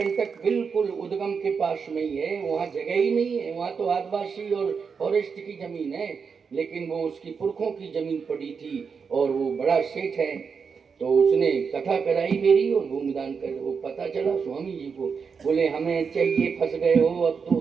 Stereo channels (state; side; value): quieter; left; 5.8 dB